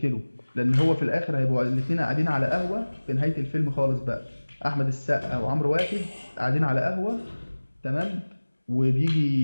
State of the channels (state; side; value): inverted; both; correlation -1.00